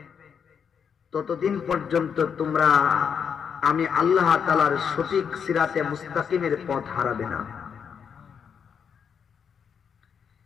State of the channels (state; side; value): quieter; right; 7.1 dB